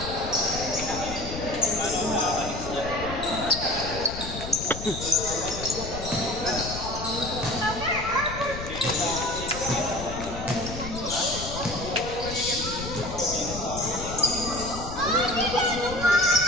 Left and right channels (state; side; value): noise; left; rumble, 8 dB below the sound